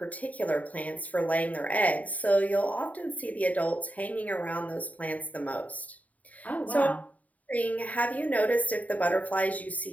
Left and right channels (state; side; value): late; right; 0.072 ms